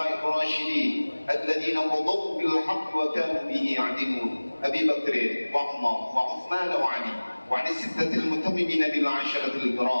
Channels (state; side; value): inverted; both; correlation -1.00